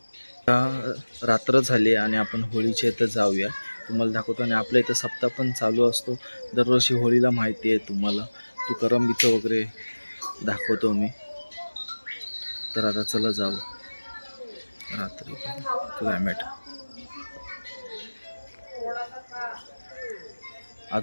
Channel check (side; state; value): both; inverted; correlation -1.00